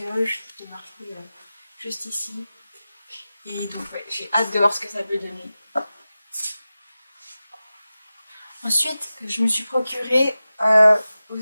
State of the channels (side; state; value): both; inverted; correlation -0.95